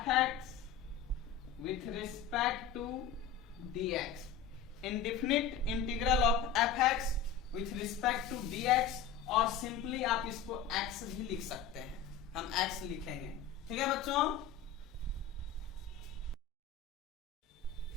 x with respect to dx, indefinite integral of f x with respect to dx, और सिंपली आप इसको x भी लिख सकते हैं, हम x लिखेंगे। ठीक है बच्चों,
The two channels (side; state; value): right; quieter; 7.3 dB